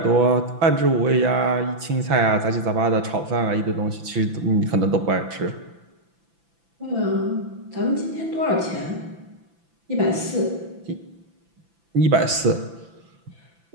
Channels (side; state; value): left; late; 5.9 ms